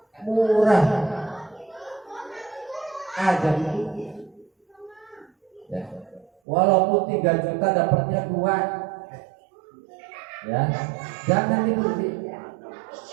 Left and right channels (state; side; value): drops out; left; at 6.3 s